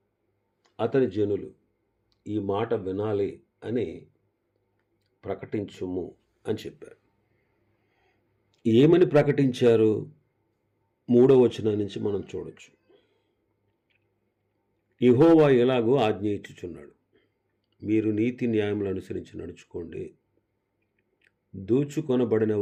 అతని జనులు ఈ మాట వినాలి అని ప్రకటించుము అని చెప్పారు. ఏమని ప్రకటించారు? 3వ వచనం నుంచి మనం చూడొచ్చు. యెహోవా ఎలాగో ఆజ్ఞ ఇచ్చుచున్నాడు, మీరు నీతి న్యాయములు అనుసరించి నడుచుకోండి. దోచుకొనబడిన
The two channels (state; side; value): identical; both; correlation 1.00